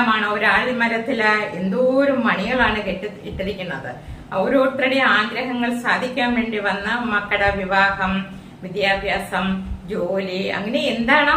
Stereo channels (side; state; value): both; identical; correlation 1.00